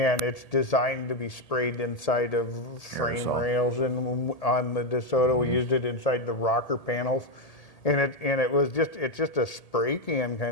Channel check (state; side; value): late; right; 1.8 ms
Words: it's designed to be sprayed inside of frame rails. And on the DeSoto, we used it inside the rocker panels. And it's just a spray can